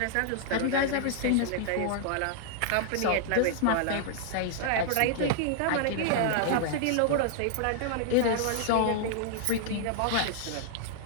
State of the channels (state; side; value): different; both; correlation -0.01